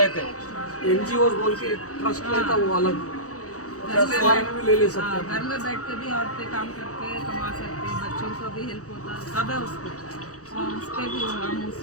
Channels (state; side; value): late; right; 0.66 ms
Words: एनजीओ बोल के ट्रस्ट रहता वो अलग भी ले ले सकते हैं। घर में बैठ के भी औरतें काम करके कमा सकते हैं, बच्चों को भी हेल्प होता है, सब है उसको। उससे भी हम